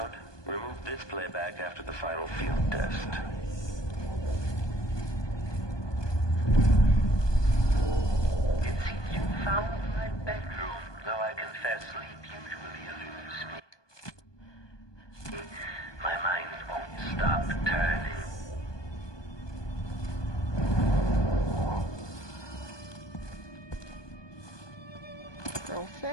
Remove this playback after the final field test. It seems you found my bedroom, though I confess sleep usually eludes me. My mind won't stop turning. Girl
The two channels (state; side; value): late; right; 1.2 ms